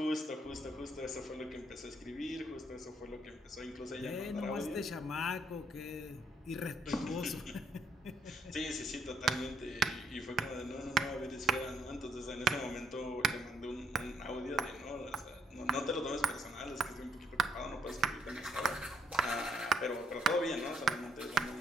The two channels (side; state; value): both; normal; correlation 0.71